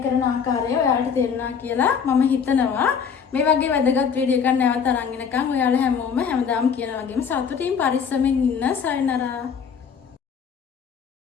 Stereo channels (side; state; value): right; quieter; 6.8 dB